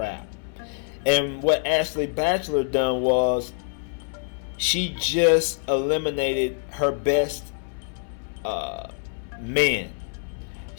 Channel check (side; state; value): right; silent; 61 dB below the other